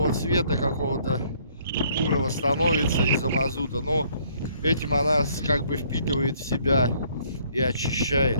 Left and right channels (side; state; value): both; inverted; correlation -0.63